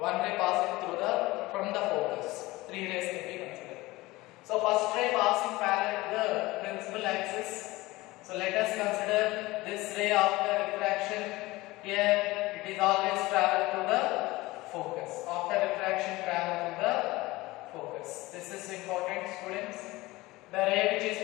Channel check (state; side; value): quieter; right; 20.0 dB